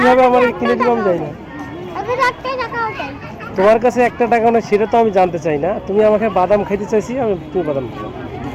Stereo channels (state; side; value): identical; both; correlation 1.00